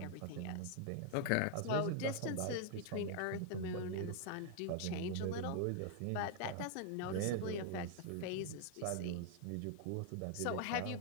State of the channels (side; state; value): both; different; correlation 0.00